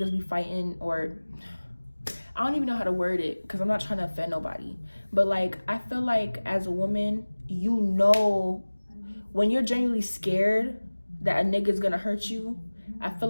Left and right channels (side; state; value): both; inverted; correlation -1.00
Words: be fighting, or I don't even know how to word it because I'm not trying to offend nobody, but like, I feel like as a woman, you know, when you're genuinely scared that a nigga's gonna hurt you, I feel